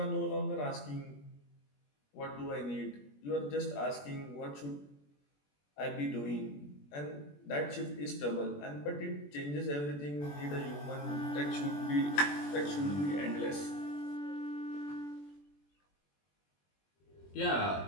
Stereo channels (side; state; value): right; late; 21 ms